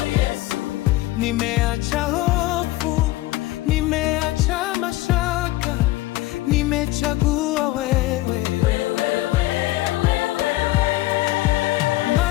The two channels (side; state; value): right; quieter; 17.9 dB